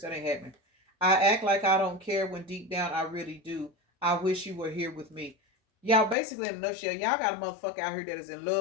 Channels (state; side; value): drops out; right; at 6.2 s